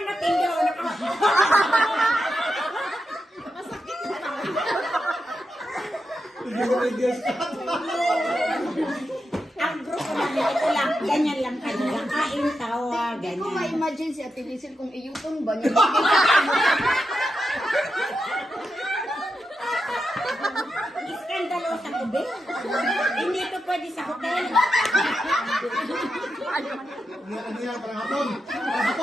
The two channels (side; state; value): both; normal; correlation 0.87